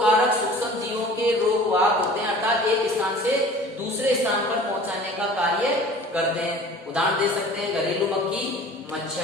कारक सूक्ष्म जीवों के रोग वाहक होते हैं, अर्थात एक स्थान से दूसरे स्थान पर पहुंचाने का कार्य करते हैं। उदाहरण दे सकते हैं घरेलू मक्खी,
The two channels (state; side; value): normal; both; correlation 0.44